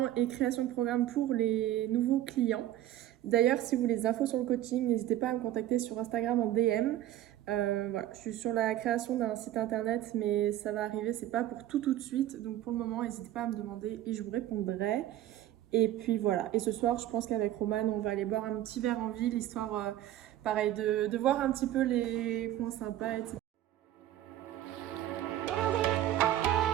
et création de programme pour les nouveaux clients. D'ailleurs si vous voulez des infos sur le coaching, n'hésitez pas à me contacter sur Instagram en DM. Voilà, je suis sur la création d'un site internet mais ça va arriver, c'est pas pour tout de suite, donc pour le moment n'hésitez pas à me demander et je vous répondrai. Et puis voilà, et ce soir je pense qu'avec Romane on va aller boire un petit verre en ville, histoire pareil de voir un petit peu les points sympas, etc.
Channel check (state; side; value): quieter; left; 13.0 dB